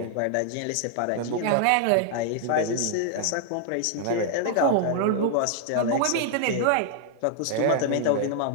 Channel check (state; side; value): different; both; correlation 0.00